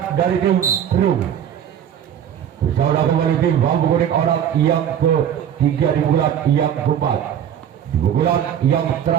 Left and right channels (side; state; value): left; quieter; 9.4 dB